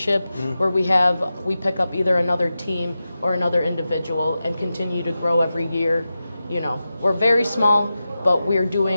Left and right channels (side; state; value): both; inverted; correlation -0.92